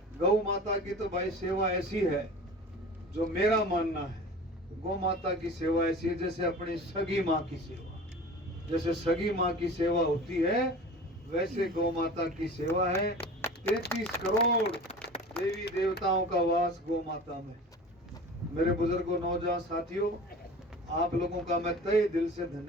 गौ माता की तो भाई सेवा ऐसी है जो मेरा मानना है, गौ माता की सेवा ऐसी है जैसे अपनी सगी माँ की सेवा, जैसे सगी माँ की सेवा होती है वैसे गौ माता की सेवा है। 33 करोड़ देवी देवताओं का वास गौ माता में। मेरे बुजुर्गों, नौजवान साथियों, आप लोगों का मैं तहे दिल से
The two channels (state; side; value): normal; both; correlation 0.38